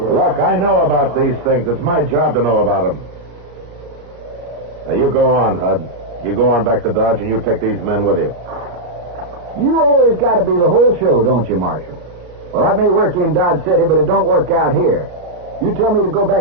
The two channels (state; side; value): late; left; 34 ms